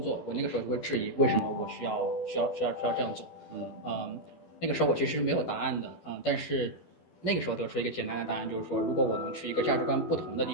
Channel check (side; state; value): right; late; 12 ms